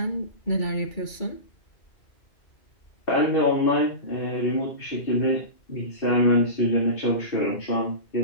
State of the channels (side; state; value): right; late; 2.3 ms